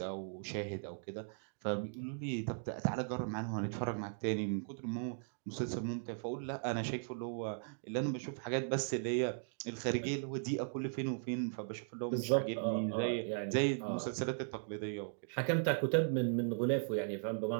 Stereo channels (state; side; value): silent; left; digital silence